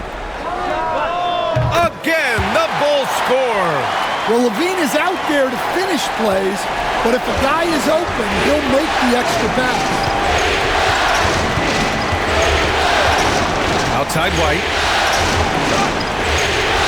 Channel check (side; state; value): both; identical; correlation 1.00